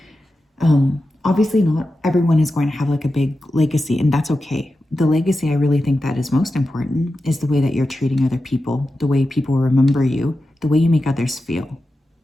Obviously not everyone is going to have like a big legacy, and that's okay. The legacy I really think that is most important is the way that you're treating other people, the way people remember you, the way you make others feel.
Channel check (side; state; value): both; normal; correlation 0.91